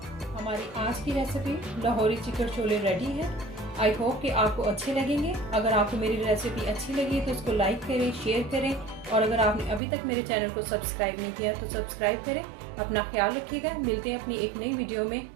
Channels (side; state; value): left; drops out; at 9.8 s